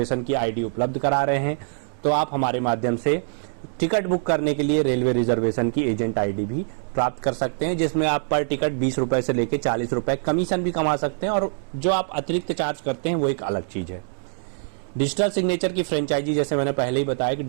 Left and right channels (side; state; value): left; silent; digital silence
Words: की आईडी उपलब्ध करा रहे हैं, तो आप हमारे माध्यम से टिकट बुक करने के लिए रेलवे रिजर्वेशन की एजेंट आईडी भी प्राप्त कर सकते हैं, जिसमें आप पर टिकट 20 रुपए से लेकर 40 रुपए कमीशन भी कमा सकते हैं, और जो आप अतिरिक्त चार्ज करते हैं वो एक अलग चीज है। डिजिटल सिग्नेचर की फ्रेंचाइजी, जैसे मैंने पहले ही बताया कि